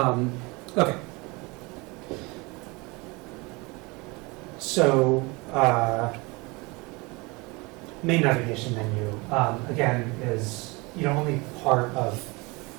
So, main navigation menu, again, is only part of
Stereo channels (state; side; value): quieter; left; 26.0 dB